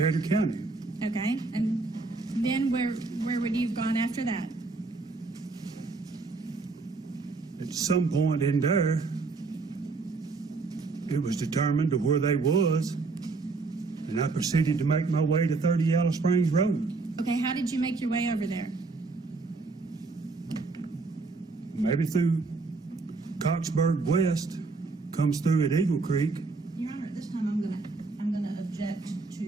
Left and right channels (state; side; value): quieter; left; 3.9 dB